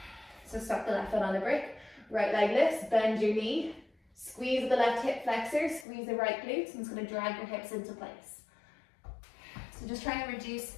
So stop the left foot on the brick, right leg lifts, bend your knee, squeeze the left hip flexor, squeeze the right glutes, and it's going to drag your hips into place. So just trying to reduce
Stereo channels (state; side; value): drops out; right; at 5.9 s